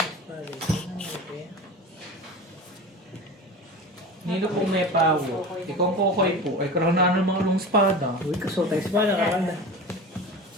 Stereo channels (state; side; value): normal; both; correlation 0.32